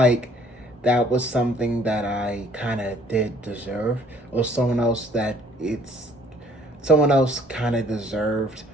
that was something that I kind of did deserve, or someone else kind of deserved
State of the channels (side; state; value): both; normal; correlation 0.58